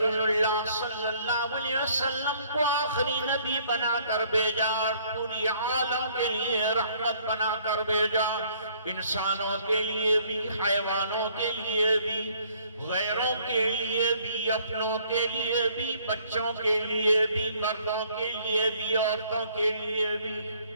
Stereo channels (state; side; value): inverted; both; correlation -0.61